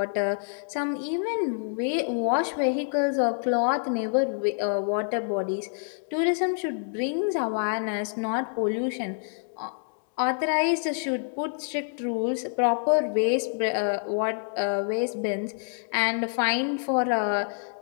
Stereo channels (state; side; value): silent; right; 60 dB below the other